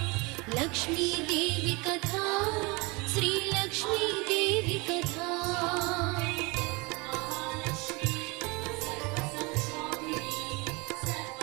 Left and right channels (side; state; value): left; quieter; 26.7 dB